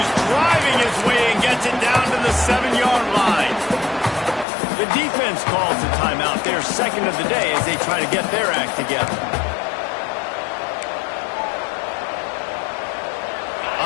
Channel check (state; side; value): drops out; right; at 4.5 s